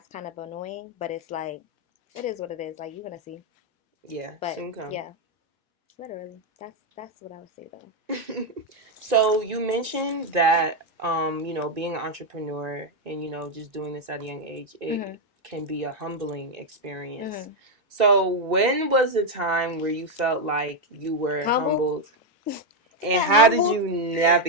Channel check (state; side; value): normal; both; correlation 0.03